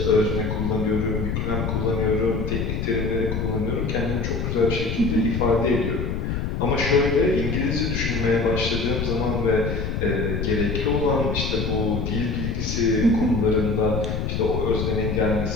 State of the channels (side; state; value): left; noise; rumble, 2 dB below the sound